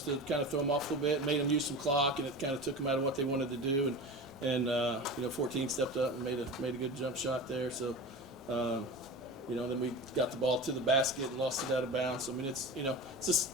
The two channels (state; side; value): normal; both; correlation 0.30